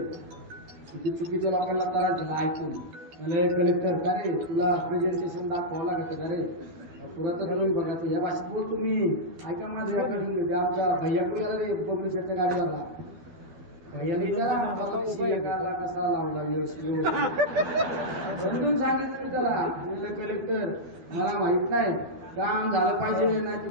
किती चुकीच्या लोकांना त्रास झाला ऐकून. कलेक्टर का रे तुला प्रेझेंटेशन दाखवावं लागत का रे? पुरातत्व विभागाचं या भाषेत बोल तुम्ही. ऐका माझं रेकॉर्डिंग. आमचा भैयाकडे गेला रे पब्लिशरच्या गाडीला. भैयाला कसा लावला व्यवस्थित समजून सांगितलं मी त्याला. कलेक्टर मला माहित नाही, काम झालं पाहिजे. नाही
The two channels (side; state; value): left; late; 12 ms